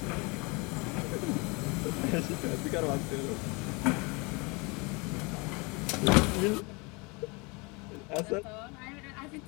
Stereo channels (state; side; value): quieter; right; 28.4 dB